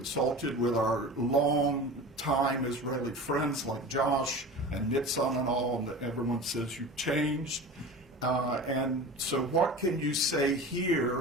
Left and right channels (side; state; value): both; normal; correlation 0.34